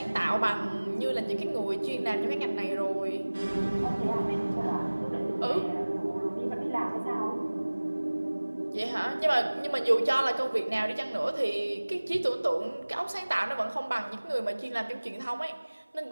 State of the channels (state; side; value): inverted; both; correlation -1.00